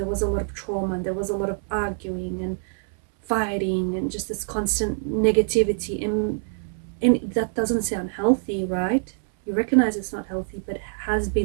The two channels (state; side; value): silent; left; 62 dB below the other